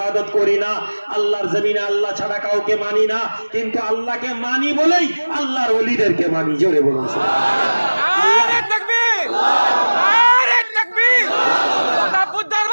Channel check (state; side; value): inverted; both; correlation -1.00